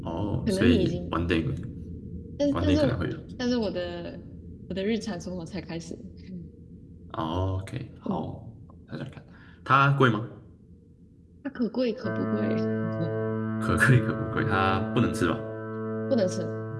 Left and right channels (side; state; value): both; identical; correlation 1.00